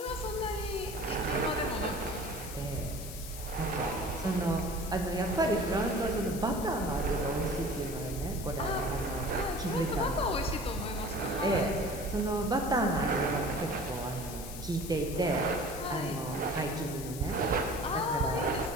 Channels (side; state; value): left; noise; hiss, 11 dB below the sound